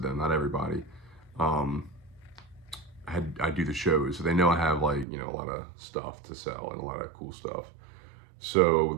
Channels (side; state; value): left; drops out; at 5.1 s